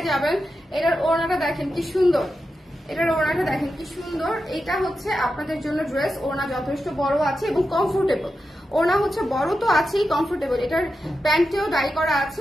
যাবেন। এটার ওড়নাটা দেখেন কি সুন্দর, এটার ওড়নাটা দেখেন কি সুন্দর। এটা হচ্ছে আপনাদের জন্য ড্রেস, ওড়না যথেষ্ট বড় আছে এবং কমফোর্টেবল। ওড়না হচ্ছে বড় তো আছেই, কমফোর্টেবল। এটার প্যান্টেও ডাই করা আছে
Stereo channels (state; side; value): normal; both; correlation 0.89